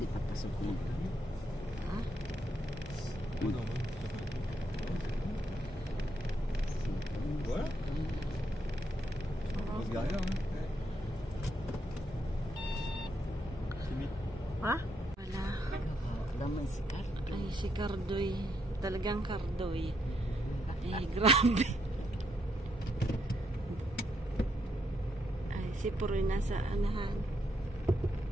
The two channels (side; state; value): both; normal; correlation 0.77